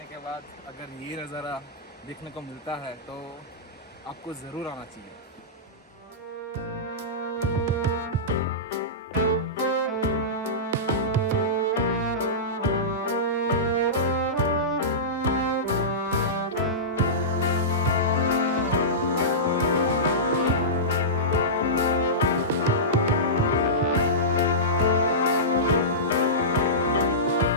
के बाद अगर ये नज़ारा देखने को मिलता है तो आपको ज़रूर आना चाहिए।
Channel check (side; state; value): both; normal; correlation -0.17